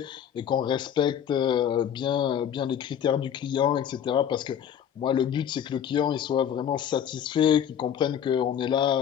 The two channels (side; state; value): right; quieter; 9.1 dB